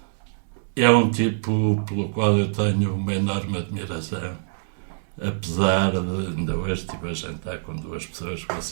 é um tipo pelo qual eu tenho uma enorme admiração. apesar de, ainda hoje estive a jantar com duas pessoas que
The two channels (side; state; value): left; silent; 62 dB below the other